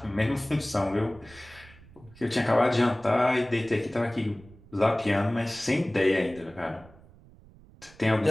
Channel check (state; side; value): noise; right; rumble, 23 dB below the sound